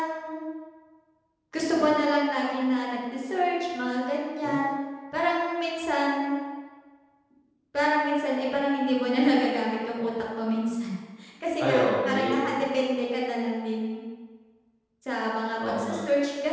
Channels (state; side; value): identical; both; correlation 1.00